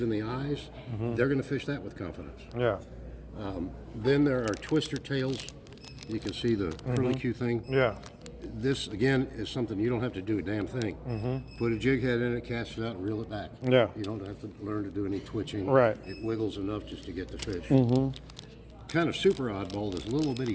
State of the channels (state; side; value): identical; both; correlation 1.00